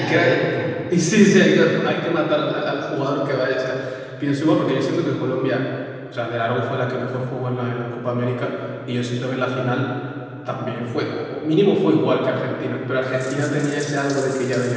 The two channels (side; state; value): both; identical; correlation 1.00